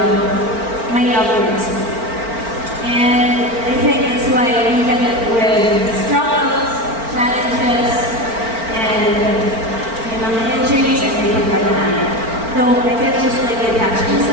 my love for wrestling. And I think that's why even with struggles, challenges, and injuries, and everything like that, no, I can't just like attach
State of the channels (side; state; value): left; late; 4.4 ms